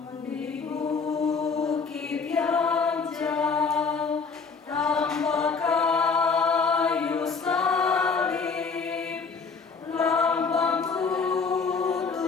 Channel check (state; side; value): quieter; right; 5.1 dB